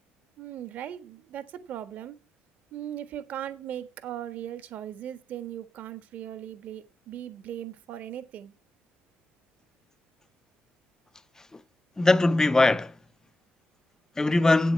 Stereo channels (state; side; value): normal; both; correlation 0.91